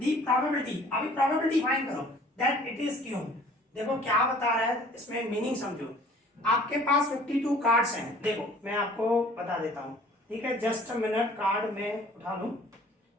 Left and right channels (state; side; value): normal; both; correlation 0.52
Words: प्रोबेबिलिटी, अभी प्रोबेबिलिटी फाइंड करो दैट इट इज क्यों। देखो क्या बता रहा है, इसमें मीनिंग समझो। आपके पास 52 कार्ड्स हैं, देखो मैं आपको बता देता हूँ, ठीक है, जस्ट अ मिनट, कार्ड में उठा लूं।